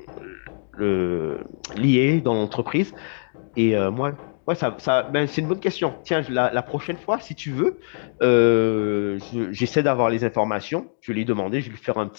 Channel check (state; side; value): silent; right; digital silence